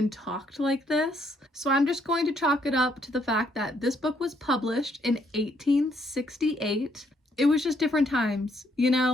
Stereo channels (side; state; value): both; normal; correlation 0.71